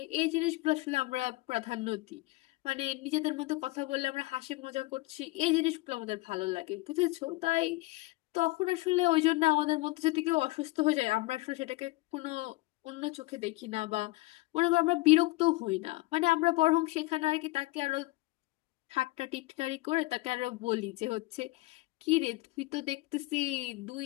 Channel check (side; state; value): right; quieter; 21.4 dB